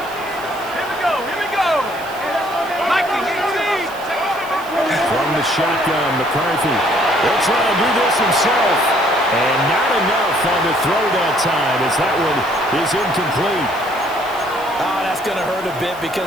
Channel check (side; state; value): right; noise; hiss, 20 dB below the sound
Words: Here we go, here we go. Mikey, 18. From the shotgun, McCarthy. He'll try to do this himself. And not enough on the throw that time as that one is incomplete. Oh, that's going to hurt a bit